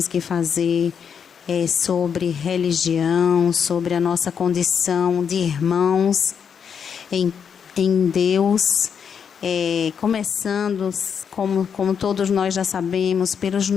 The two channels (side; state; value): right; quieter; 7.2 dB